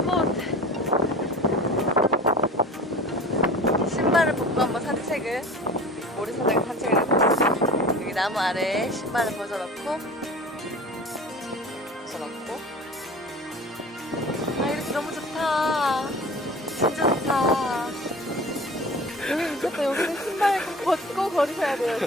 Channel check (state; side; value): normal; both; correlation 0.39